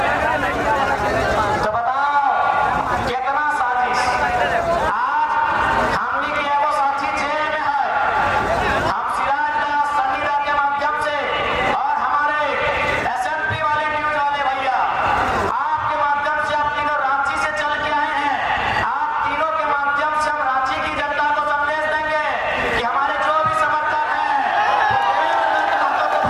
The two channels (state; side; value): identical; both; correlation 1.00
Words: तो बताओ कितना साजिश। आज हमनी के एगो साथी जेल में है, हम सिराजदास सन्नीदा के माध्यम से और हमारे एसएमपी वाले न्यूज वाले भैया आपके माध्यम से, आप तीनों रांची से चल के आए हैं, आप तीनों के माध्यम से हम रांची की जनता को संदेश देंगे कि हमारे जो भी समर्थक हैं देवेंद्र नाथ महतो को